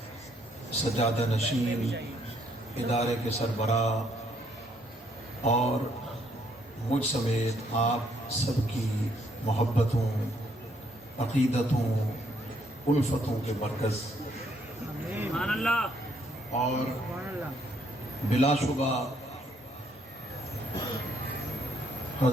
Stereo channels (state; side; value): normal; both; correlation 0.69